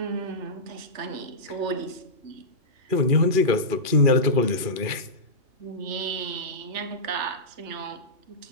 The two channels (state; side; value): late; left; 2.4 ms